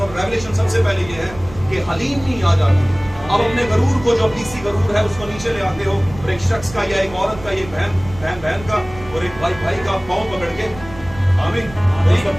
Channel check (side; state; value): right; noise; rumble, 16 dB below the sound